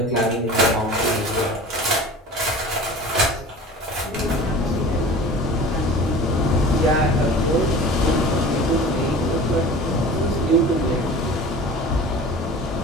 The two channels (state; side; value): normal; both; correlation 0.40